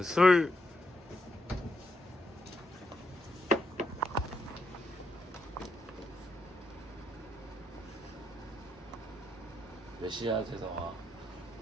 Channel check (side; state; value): both; normal; correlation 0.80